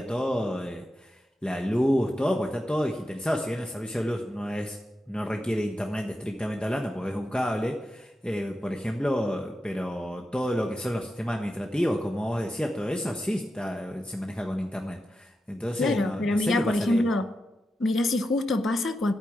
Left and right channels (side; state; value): both; normal; correlation 0.89